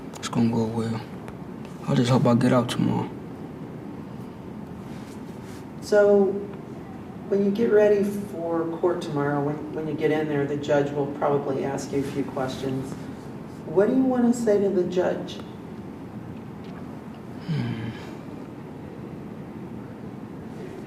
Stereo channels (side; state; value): both; identical; correlation 1.00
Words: It's gonna go well. I just hope I get out tomorrow. So when you get ready for court tomorrow, when you get in there, the judge will probably ask you a few questions. What do you want to say to the judge?